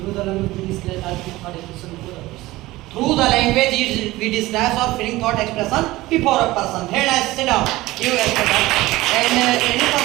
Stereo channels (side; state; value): left; quieter; 18.5 dB